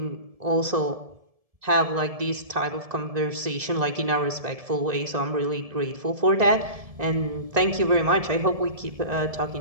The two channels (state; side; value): late; left; 1.7 ms